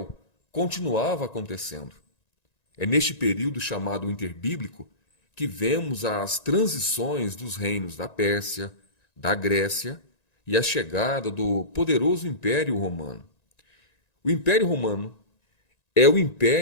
continuava acontecendo. É neste período chamado interbíblico que vemos as transições dos reinos da Pérsia, da Grécia e a chegada do poderoso Império Romano. O Império Romano é o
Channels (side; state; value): right; late; 1.9 ms